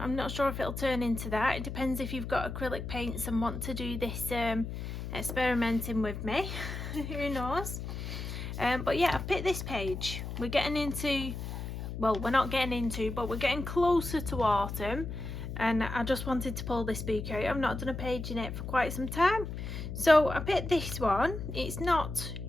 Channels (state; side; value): noise; left; hum, 6 dB below the sound